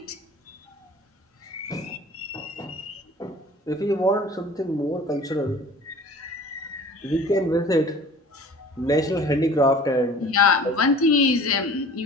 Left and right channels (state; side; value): normal; both; correlation 0.45